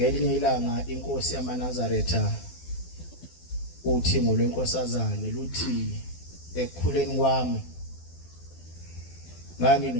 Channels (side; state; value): right; late; 12 ms